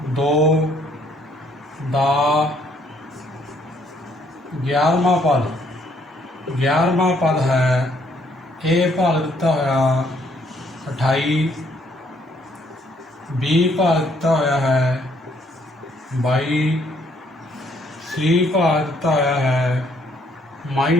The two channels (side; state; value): both; normal; correlation 0.67